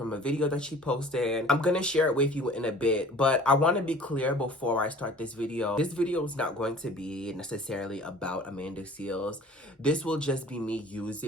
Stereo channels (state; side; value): normal; both; correlation 0.47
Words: a video that she posted. I'm going to share it with you in a bit, but I want to be clear before I start this video. This video is not going to be necessarily about Amanda Seales. This will just be me